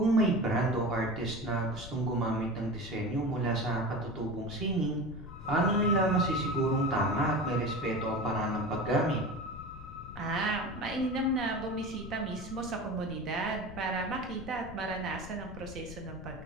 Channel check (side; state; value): left; noise; rumble, 14 dB below the sound